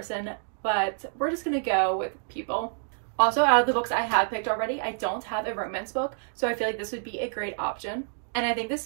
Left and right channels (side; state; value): left; silent; digital silence